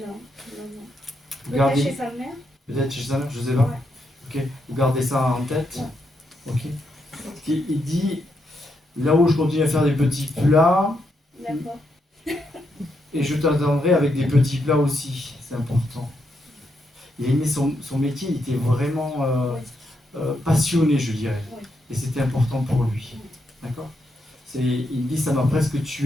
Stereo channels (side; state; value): both; normal; correlation 0.80